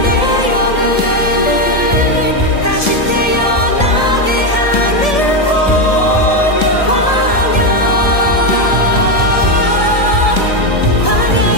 내 영을 다시 태어나게 하는 곳 광야.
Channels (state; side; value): late; right; 1.7 ms